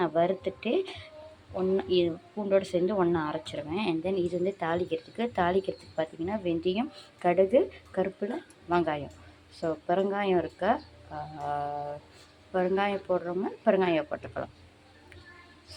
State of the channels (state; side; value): identical; both; correlation 1.00